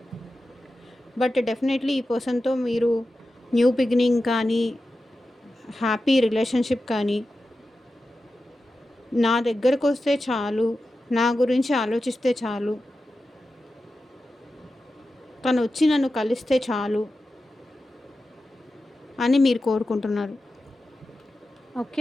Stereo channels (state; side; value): normal; both; correlation 0.92